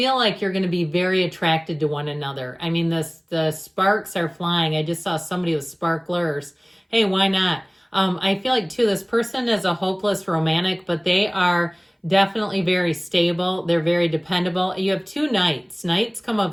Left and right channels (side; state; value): both; identical; correlation 1.00